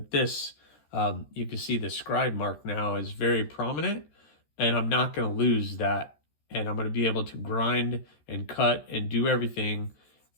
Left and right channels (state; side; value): late; right; 13 ms